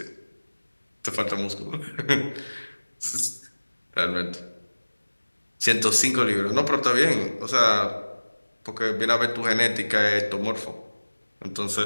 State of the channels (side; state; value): both; inverted; correlation -1.00